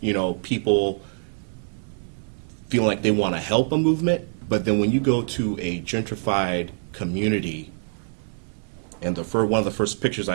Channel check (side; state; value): left; silent; digital silence